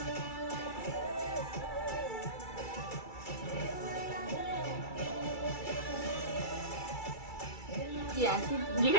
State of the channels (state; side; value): late; right; 2.3 ms